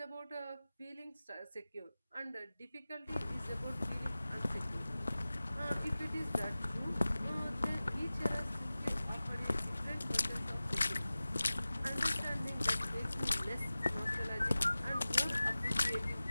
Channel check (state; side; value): inverted; both; correlation -0.97